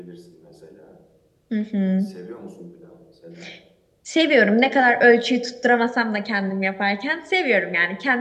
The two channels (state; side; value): identical; both; correlation 1.00